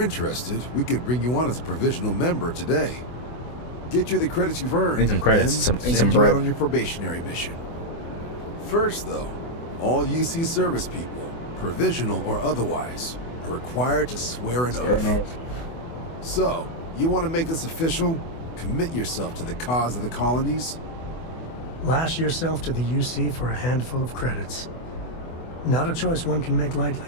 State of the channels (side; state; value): right; late; 24 ms